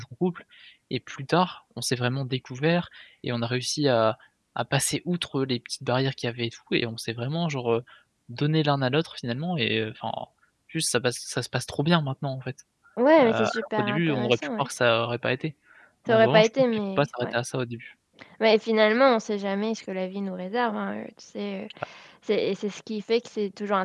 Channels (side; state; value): both; identical; correlation 1.00